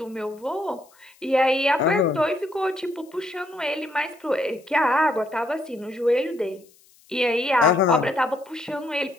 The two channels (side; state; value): left; noise; hiss, 30 dB below the sound